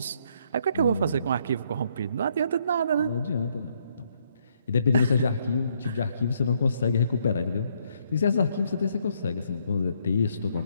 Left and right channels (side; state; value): both; inverted; correlation -0.71